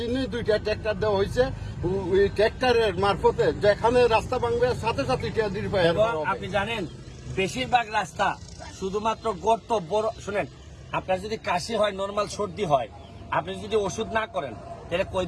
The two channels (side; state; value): both; identical; correlation 1.00